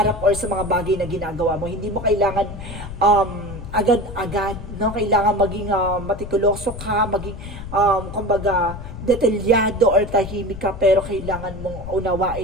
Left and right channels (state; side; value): noise; left; rumble, 10 dB below the sound